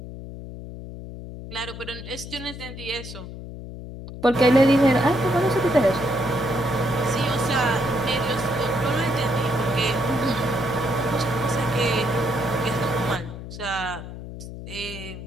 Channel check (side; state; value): left; noise; hum, 11 dB below the sound